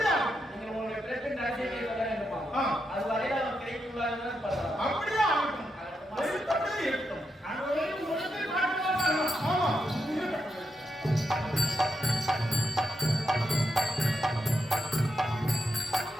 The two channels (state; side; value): normal; both; correlation 0.84